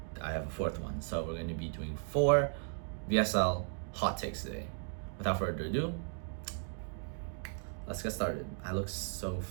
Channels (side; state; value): left; silent; 54 dB below the other